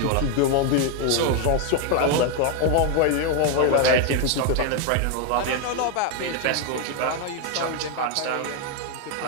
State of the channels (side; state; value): both; different; correlation 0.01